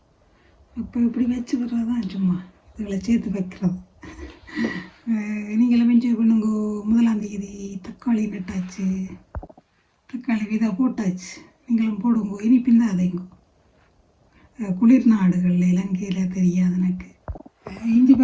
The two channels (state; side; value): identical; both; correlation 1.00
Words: அப்போ இப்படி வச்சு விடுறது தான் சும்மா இதில் சேர்த்து வைக்கிறது. நீங்களும் என்ஜாய் பண்ணுங்க. 1ஆம் தேதி தக்காளி நட்டாச்சு. தக்காளி விதை போட்டாச்சு. நீங்களும் போடுங்க. இனி பின்னாதீங்க. குளிர் நாடுகளில் இலங்கையில் தெரியாது எனக்கு. இஞ்சி